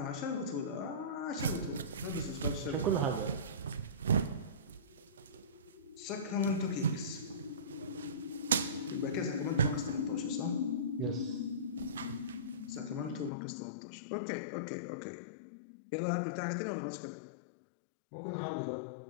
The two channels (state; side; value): drops out; right; at 13.3 s